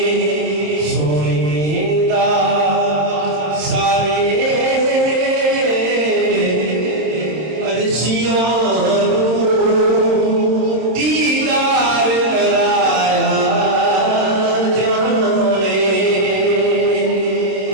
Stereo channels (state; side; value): late; left; 26 ms